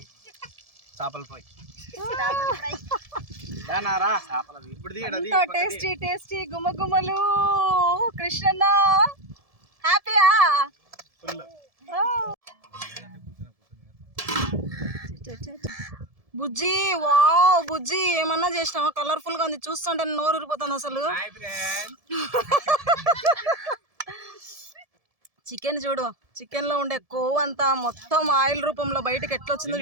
చేపల ఫ్రై. టేస్టీ టేస్టీ గుమ్మగుమ్మలు. కృష్ణన్న హ్యాపీయా? బుజ్జి వావ్ బుజ్జి ఏమన్నా చేసినావా? కలర్ఫుల్ గా ఉంది, చూస్తుంటే నోరు ఊరిపోతుంది అసలు. చికెన్ చూడు, చికెన్ లో ఉండే కొవ్వు అంతా మొత్తం ఆయిల్ రూపంలో బయటకు ఎట్లా వచ్చిందో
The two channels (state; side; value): late; left; 1.7 ms